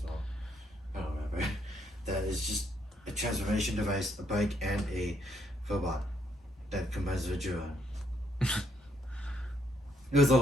well. I don't remember. That is just a transformation device, a bike, and a robot that combines with Jura. It was a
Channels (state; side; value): normal; both; correlation 0.73